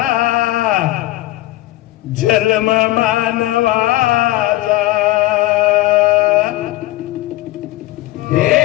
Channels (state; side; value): quieter; right; 16.8 dB